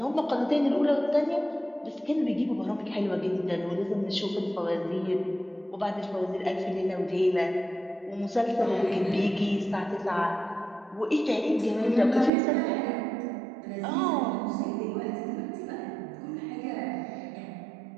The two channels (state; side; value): drops out; left; at 12.3 s